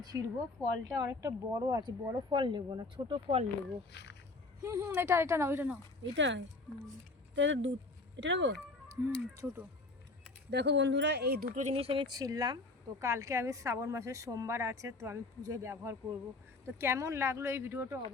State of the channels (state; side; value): quieter; right; 3.3 dB